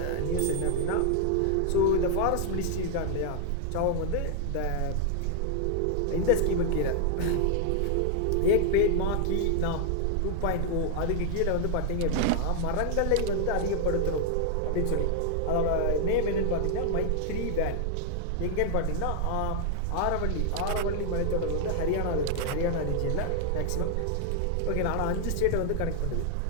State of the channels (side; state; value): both; different; correlation 0.00